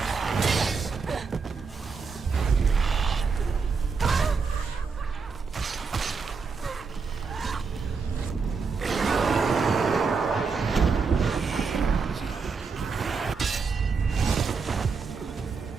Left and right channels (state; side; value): quieter; left; 5.0 dB